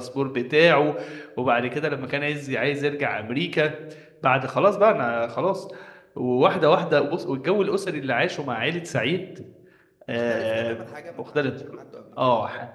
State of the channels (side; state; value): both; identical; correlation 1.00